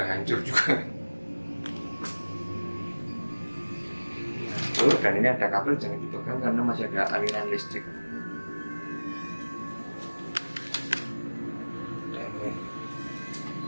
hancur juga. Oh, dan ini ada kabel, jangan dipegang karena masih ada aliran listrik. Dan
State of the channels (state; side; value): inverted; both; correlation -1.00